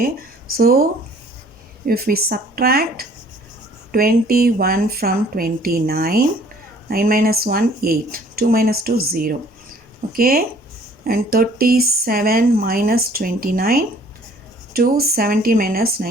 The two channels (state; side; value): normal; both; correlation 0.56